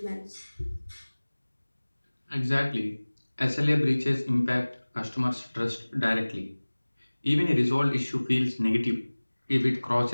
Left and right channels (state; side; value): inverted; both; correlation -1.00